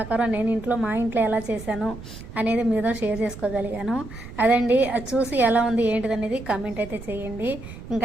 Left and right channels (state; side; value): noise; right; rumble, 13 dB below the sound